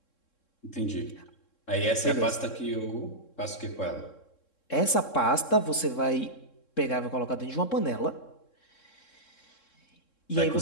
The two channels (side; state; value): right; late; 3.7 ms